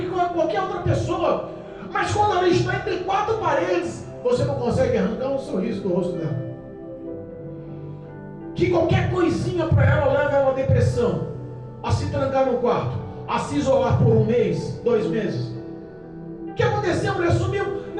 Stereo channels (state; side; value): identical; both; correlation 1.00